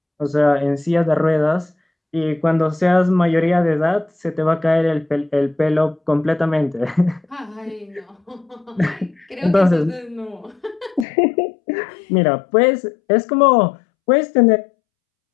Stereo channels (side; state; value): right; drops out; at 11.1 s